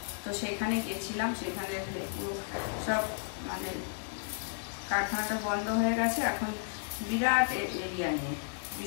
তো সেখানে গেছিলাম। সেখানে পুরো সব মানে কারখানাটা বন্ধ হয়ে গেছে এখন, বিরাট এরিয়া নিয়ে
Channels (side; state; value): right; silent; digital silence